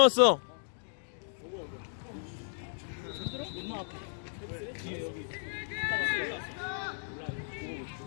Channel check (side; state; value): right; silent; digital silence